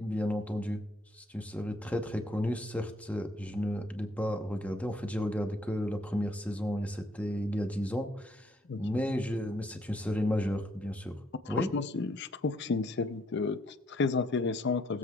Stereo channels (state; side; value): normal; both; correlation 0.68